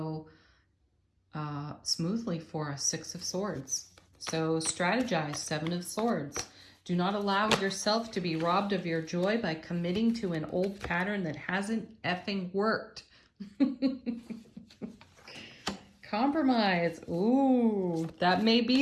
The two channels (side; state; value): both; identical; correlation 1.00